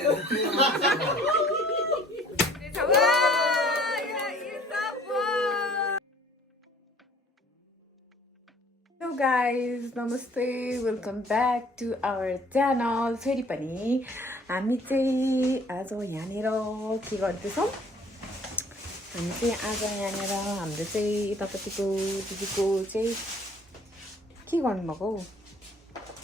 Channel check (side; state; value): both; normal; correlation 0.55